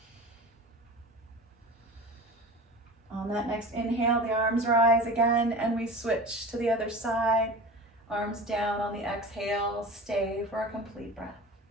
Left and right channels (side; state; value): both; normal; correlation 0.35